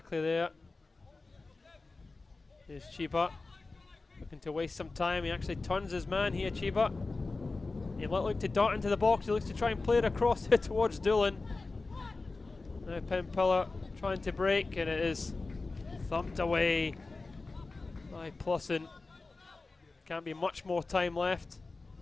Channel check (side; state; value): right; quieter; 3.6 dB